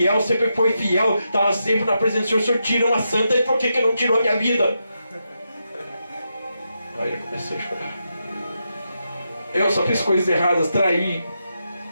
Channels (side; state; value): both; inverted; correlation -0.85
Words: sempre foi fiel, estava sempre na presença do Senhor. O Senhor tira uma santa, e por que não tirou a minha vida? Aí eu comecei a chorar. Eu só fiz coisas erradas, traí.